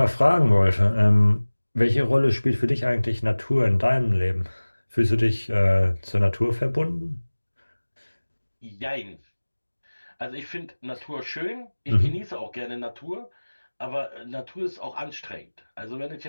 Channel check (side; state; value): both; inverted; correlation -1.00